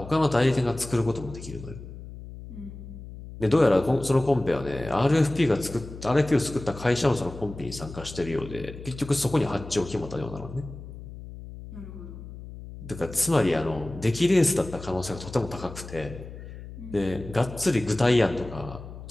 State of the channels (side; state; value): left; noise; hum, 13 dB below the sound